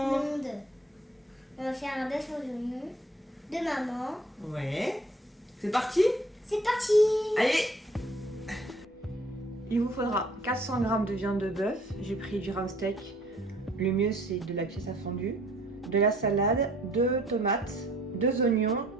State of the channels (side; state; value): both; normal; correlation 0.57